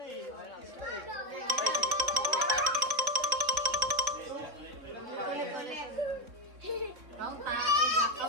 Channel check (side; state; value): left; late; 3.6 ms